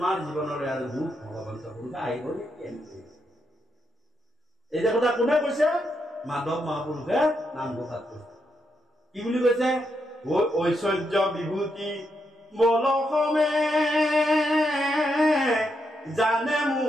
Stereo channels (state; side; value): normal; both; correlation 0.81